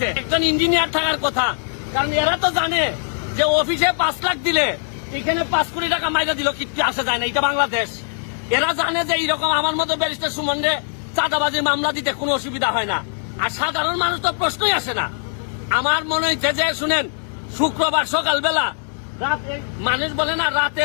একজন ইঞ্জিনিয়ার থাকার কথা, কারণ এরা তো জানে যে অফিসে 5 লাখ দিলে এখানে 5 কোটি টাকা মাইরা দিল কিচ্ছু আসা যায় না, এটা বাংলাদেশ। এরা জানে যে এইরকম আমার মতো ব্যারিস্টার সুমনরে চাঁদাবাজির মামলা দিতে কোনো অসুবিধা হয় না, আর সাধারণ মানুষ তো প্রশ্নই আসে না। আমার মনে হচ্ছে যে শুনেন, শুক্রবার সকালবেলা মানুষ বলে না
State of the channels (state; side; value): silent; right; digital silence